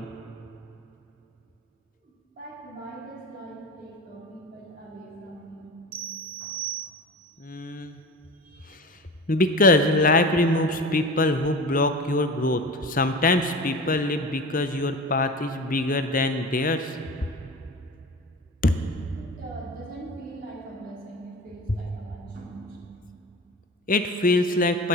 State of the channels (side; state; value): both; normal; correlation 0.33